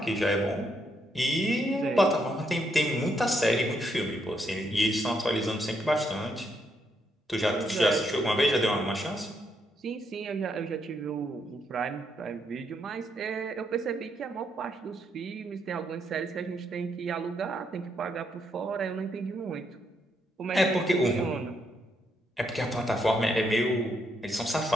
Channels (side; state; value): both; normal; correlation 0.77